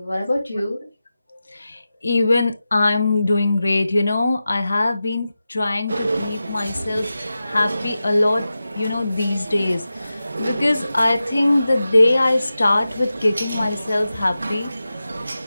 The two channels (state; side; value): inverted; both; correlation -0.93